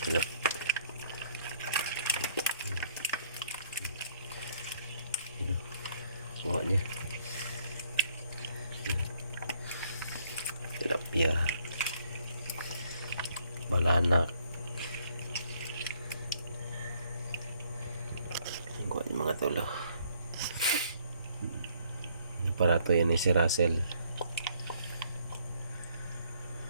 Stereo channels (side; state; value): both; inverted; correlation -0.65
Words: Tilap. Buka niya. Tilapia. Balanak. Buka niya mga tulo. Para to yan ni si Russell.